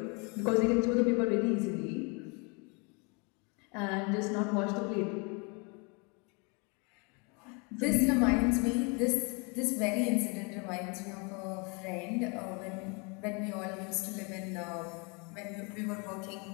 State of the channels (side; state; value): right; quieter; 32.2 dB